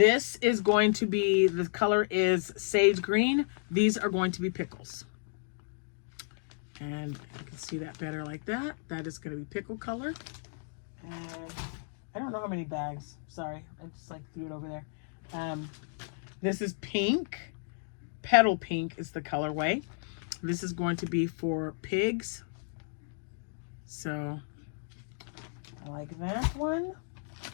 is going to be, the color is sage green. These are going to be pickles. And you can see that better like that. That is going to be pickle color. And I don't know how many bags. Sorry, I just like threw it over there. This is pink. Petal pink is the colorway. This is going to be for pigs. So I like that one.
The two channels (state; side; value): silent; right; 56 dB below the other